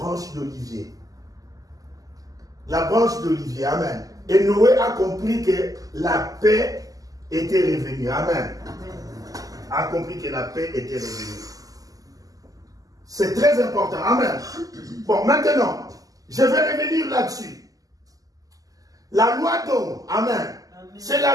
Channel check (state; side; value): late; left; 0.17 ms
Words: d'olivier. La branche d'olivier, Amen. Et Noé a compris que la paix était revenue, Amen. A compris que la paix était revenue. C'est très important, Amen. Bon, maintenant, je vais revenir là-dessus. La loi d'Ohm, Amen, c'est